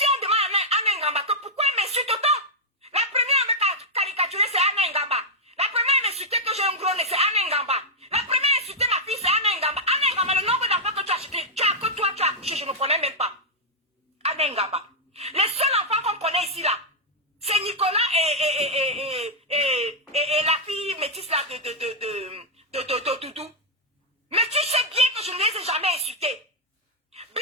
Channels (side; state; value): both; normal; correlation -0.03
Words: on demande à Anna Ngamba que pourquoi elle m'insulte autant? La première à me caricaturer, c'est Anna Ngamba. La première à m'insulter que j'ai un gros nez, c'est Anna Ngamba. La première à insulter ma fille, c'est Anna Ngamba. Anna Ngamba, le nombre d'enfants que tu as acheté, que toi tu as accouché, je ne connais même pas. Anna Ngamba. Les seuls enfants qu'on connaît ici là, c'est Nicolas et la fille métisse là de Doudou. Mais tu sais bien que je ne les ai jamais insultés.